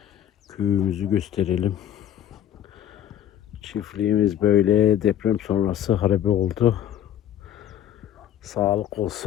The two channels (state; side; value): quieter; right; 10.8 dB